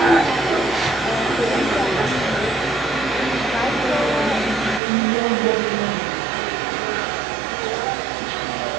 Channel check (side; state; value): left; drops out; at 4.8 s